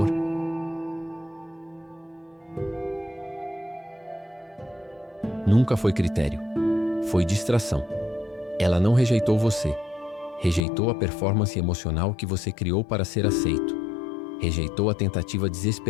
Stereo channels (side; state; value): right; drops out; at 10.6 s